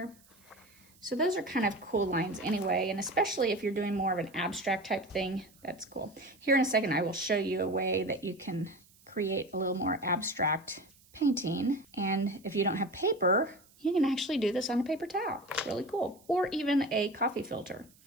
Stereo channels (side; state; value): right; noise; hiss, 28 dB below the sound